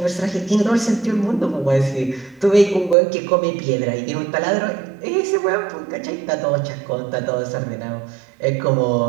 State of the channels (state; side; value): drops out; left; at 3.0 s